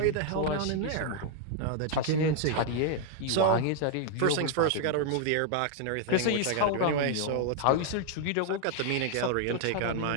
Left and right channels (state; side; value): different; both; correlation 0.00